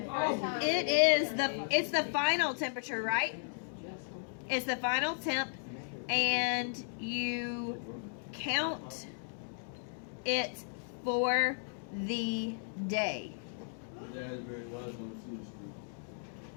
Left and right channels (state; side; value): silent; right; digital silence